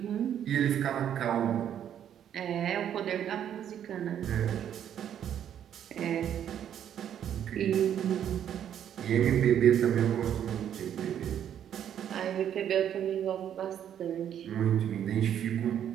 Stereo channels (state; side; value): quieter; left; 9.7 dB